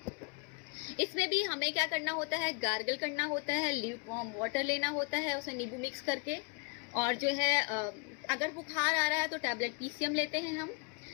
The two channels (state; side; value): quieter; right; 31.3 dB